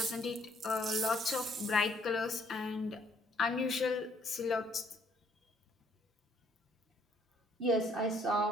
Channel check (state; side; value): normal; both; correlation 0.65